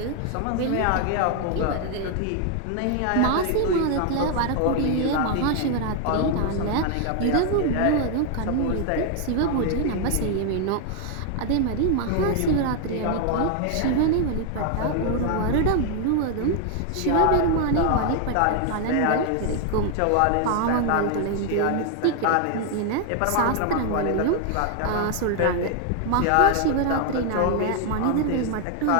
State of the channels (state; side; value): different; both; correlation 0.00